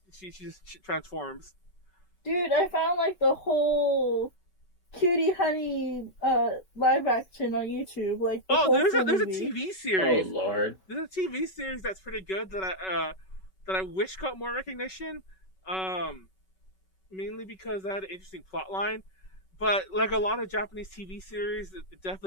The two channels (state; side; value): late; right; 5.3 ms